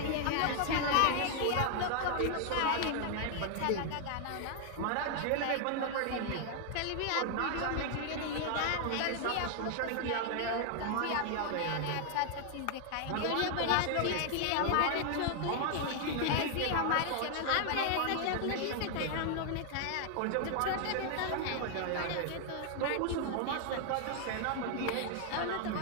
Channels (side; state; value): both; different; correlation 0.00